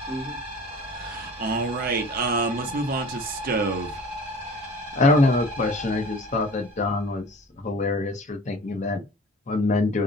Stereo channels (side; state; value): both; normal; correlation 0.43